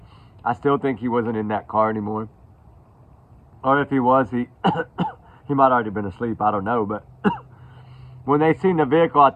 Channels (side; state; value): both; identical; correlation 1.00